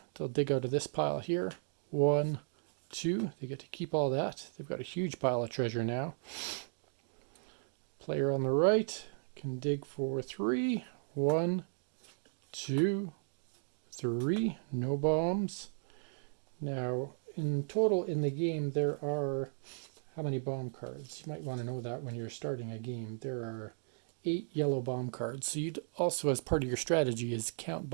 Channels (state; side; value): silent; left; digital silence